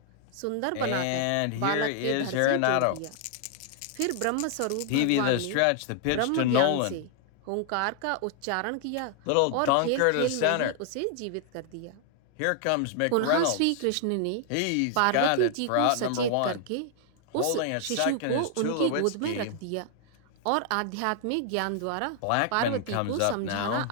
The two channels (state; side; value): different; both; correlation 0.00